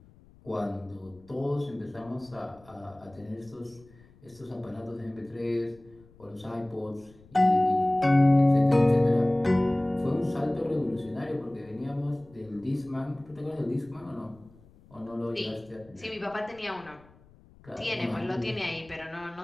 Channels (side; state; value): left; noise; rumble, 26 dB below the sound